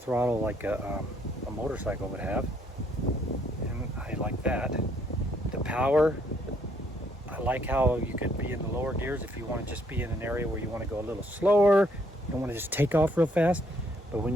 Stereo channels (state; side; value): normal; both; correlation 0.68